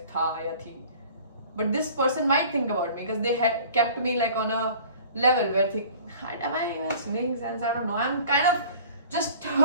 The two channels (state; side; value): inverted; both; correlation -0.46